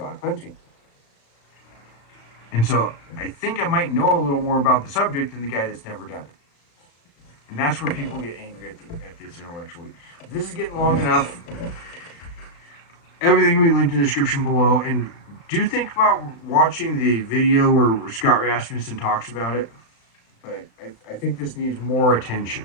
hunting. And so I think I might know a little more about the subject than the guy that's never done it. And that's where people get angry at this intellectually. This is getting long enough. Everything will be linked in the description below. And do think about watching the video where Scott Rasmussen talks about it. But I think this needs more attention.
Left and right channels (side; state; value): right; late; 35 ms